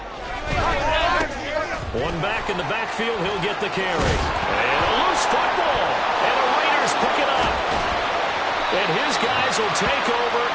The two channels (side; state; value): both; identical; correlation 1.00